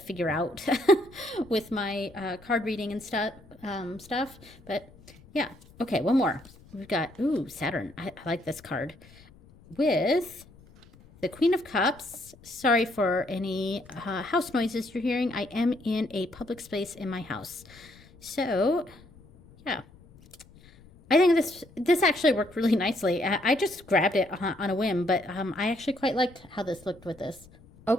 out with my card reading and stuff. But yeah, okay, one more. We've got, ooh, Saturn. I like this card. With the Queen of Cups. Sorry for any house noises you're hearing. I am in a public space in my house. So, yeah. I think this actually worked really nicely. I just grabbed it on a whim, but I actually quite liked how this looked with this.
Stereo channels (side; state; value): left; noise; rumble, 24 dB below the sound